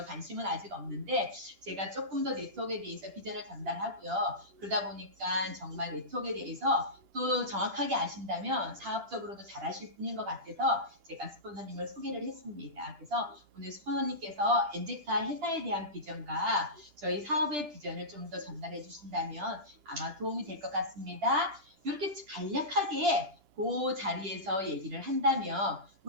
관심은 아직 없는데 제가 조금 더 네트워크에 대해서 비전을 전달하고요. 그러다 보니까 정말 네트워크에 대해서 또 정확하게 아신다면 사업적으로도 잘하실 분인 것 같아서 제가 스폰서님을 소개를 했습니다. 그래서 오늘 스폰서님께서 엔젝타 회사에 대한 비전과 저희 사업의 비전을 좀 더 전달해 주신다면 아마 도움이 될 것 같습니다. 이렇게 간략하게 그 자리에서 얘기를 한다면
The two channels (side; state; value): left; late; 2.8 ms